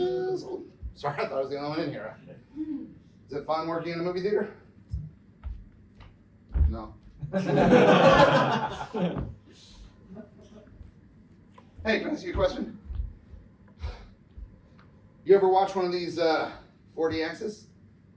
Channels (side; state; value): both; identical; correlation 1.00